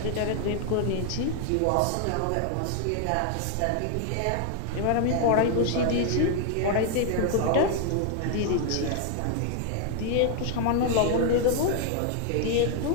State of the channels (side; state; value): both; different; correlation 0.00